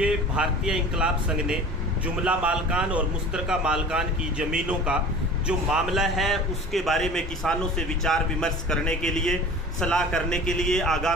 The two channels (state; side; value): normal; both; correlation 0.40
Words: भारतीय इंकलाब संघ ने जुमला मालकान और मुश्तरका मालकान की ज़मीनों का जो मामला है उसके बारे में किसानों से विचार विमर्श करने के लिए, सलाह करने के लिए,